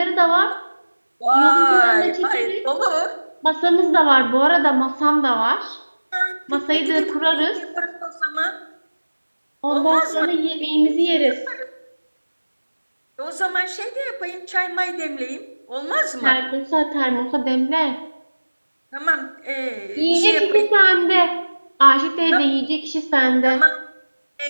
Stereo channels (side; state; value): both; inverted; correlation -1.00